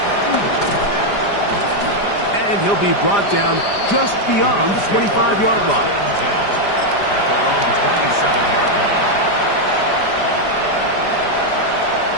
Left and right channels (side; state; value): right; late; 5.0 ms